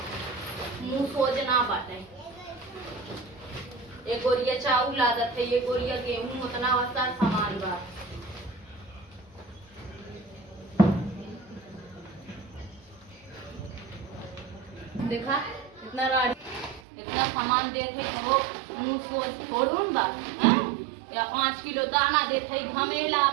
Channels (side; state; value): left; drops out; at 16.8 s